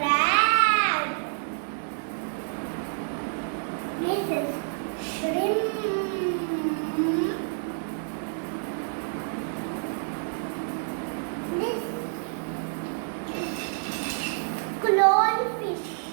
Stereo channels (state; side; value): silent; left; digital silence